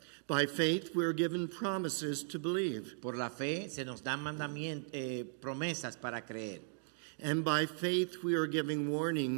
By faith, we are given promises to believe. Por la fe, se nos dan promesas para creer. And by faith, we are giving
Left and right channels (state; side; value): silent; left; digital silence